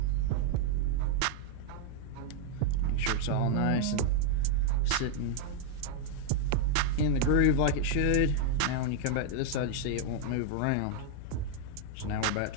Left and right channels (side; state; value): both; different; correlation 0.00